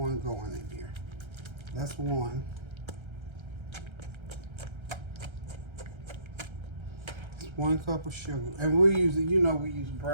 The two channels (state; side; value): late; left; 1.3 ms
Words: going in here. That's 1. It's 1 cup of sugar. And we're using, you know, we use